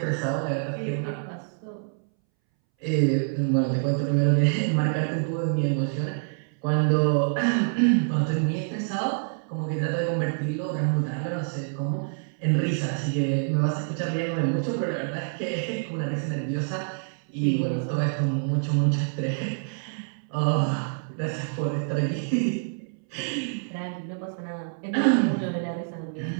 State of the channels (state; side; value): silent; left; 60 dB below the other